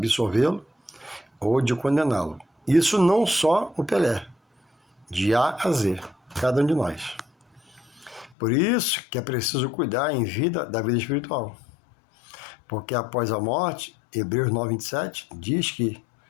ou de condená-lo. Isso não só o Pelé, de A a Z, cada um de nós. Por isso que é preciso cuidar em vida da vida espiritual. Porque após a morte, Hebreus 9:27 diz que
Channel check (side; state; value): right; drops out; at 8.3 s